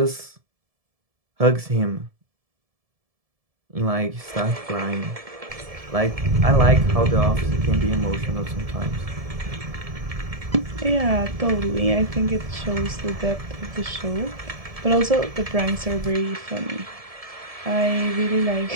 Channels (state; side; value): late; left; 1.7 ms